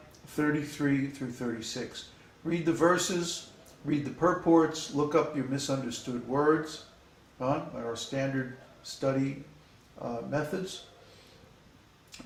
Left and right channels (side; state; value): both; identical; correlation 1.00